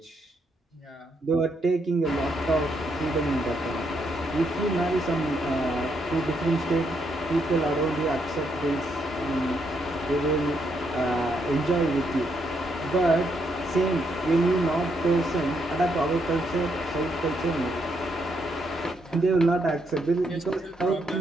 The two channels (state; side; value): normal; both; correlation 0.77